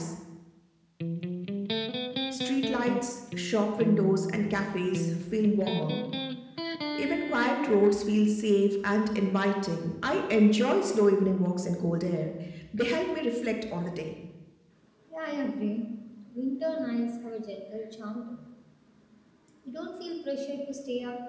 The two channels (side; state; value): both; identical; correlation 1.00